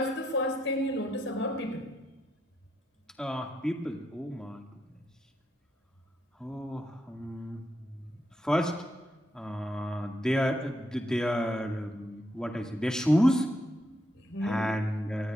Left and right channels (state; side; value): normal; both; correlation 0.80